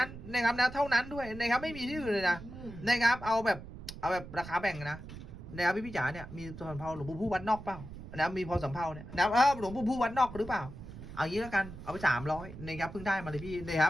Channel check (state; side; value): noise; right; rumble, 13 dB below the sound